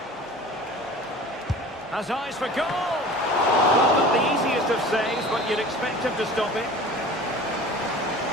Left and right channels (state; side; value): normal; both; correlation 0.41